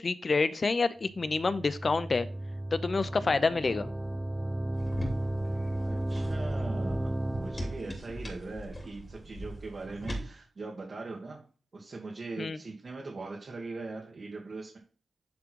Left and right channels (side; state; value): both; normal; correlation 0.95